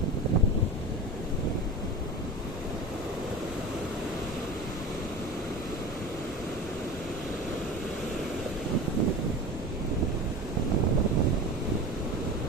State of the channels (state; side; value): normal; both; correlation 0.32